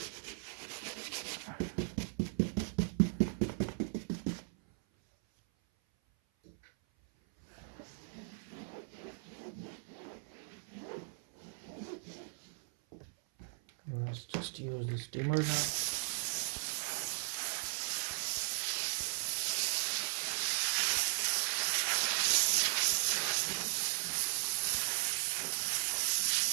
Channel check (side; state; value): left; silent; 53 dB below the other